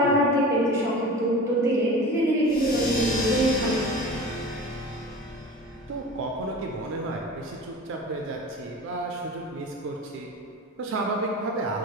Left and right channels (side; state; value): both; normal; correlation 0.35